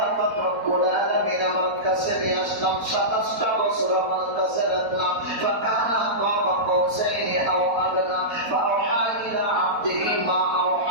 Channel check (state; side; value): late; left; 4.1 ms